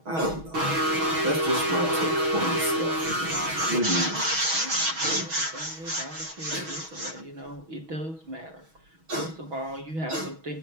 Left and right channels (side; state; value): left; late; 6.2 ms